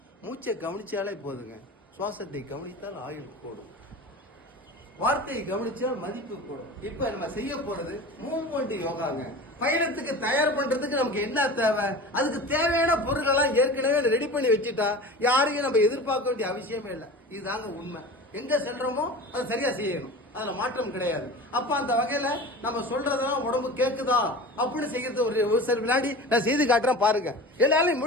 மூச்சை கவனிச்சாலே போதுங்க. சுவாசத்தை கவனித்தால் ஆயுள் கூடும், வார்த்தையை கவனிச்சால் மதிப்பு கூடும். இப்ப நம்ம செய்ய போறது மூவ்மெண்ட் யோகாங்க. பயணத்துக்கு தயார் பண்றதுக்கு நமக்கு என்ன தேவை, அதுக்கு தேவையான பொருட்கள்லாம் ஏற்கனவே ரெடி பண்ணி வச்சுட்டா யாரையும் நம்ம எதிர்பார்க்க வேண்டிய அவசியமே இல்லை. இதுதாங்க உண்மை. எங்க சென்றோமோ அதை சரியா செய்யணும், அதுல மாற்றம் கிடையாது. அப்ப அந்த வகையில நம்ம சொல்றதெல்லாம் உடம்பு கேக்குதா அப்படின்னு செய்யறது ஒரு சில விளையாடி நான் செய்து காட்டுறேன் பாருங்க. எல்லாரும்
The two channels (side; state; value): both; normal; correlation 0.35